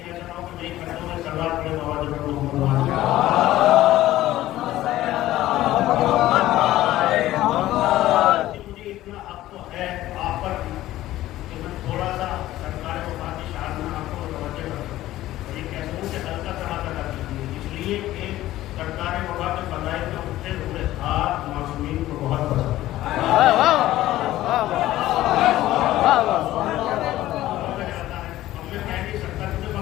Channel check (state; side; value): quieter; right; 15.0 dB